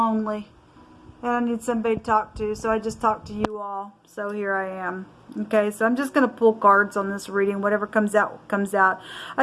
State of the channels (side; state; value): both; identical; correlation 1.00